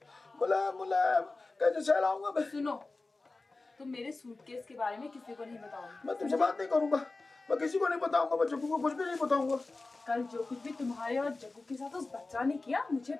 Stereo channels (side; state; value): right; quieter; 3.4 dB